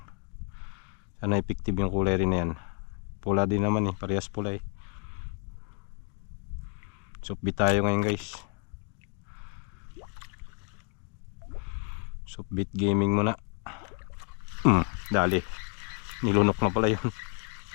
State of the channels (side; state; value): right; quieter; 36.0 dB